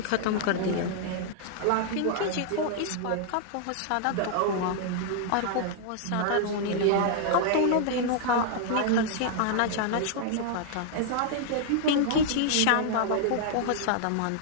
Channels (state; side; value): different; both; correlation 0.00